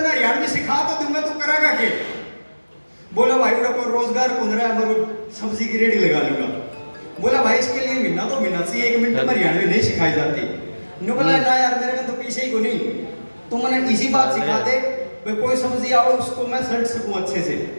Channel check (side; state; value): both; inverted; correlation -1.00